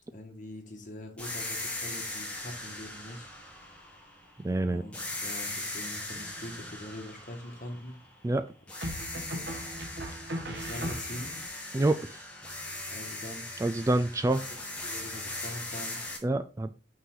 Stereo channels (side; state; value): both; normal; correlation 0.62